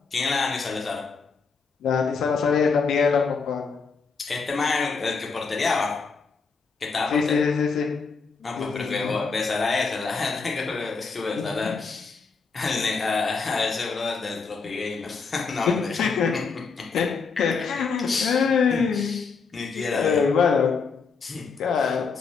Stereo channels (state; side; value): quieter; right; 4.9 dB